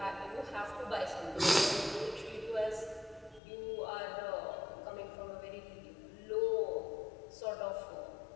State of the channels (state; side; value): drops out; right; at 3.4 s